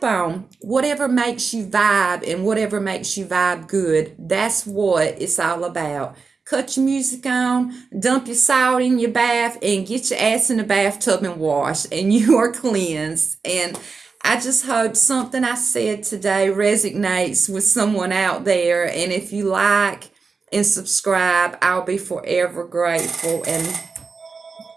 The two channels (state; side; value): quieter; left; 4.7 dB